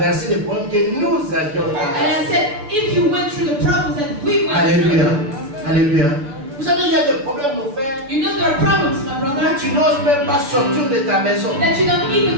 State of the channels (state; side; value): late; left; 7.0 ms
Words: les problèmes que nous avions And traversés? I said, if you went through the problems that we went Alléluia. through, Alléluia. Vous savez, il y a des problèmes, mon frère. you know there are problems, my Là, brother, tu n'oses même pas sortir de ta maison. that you don't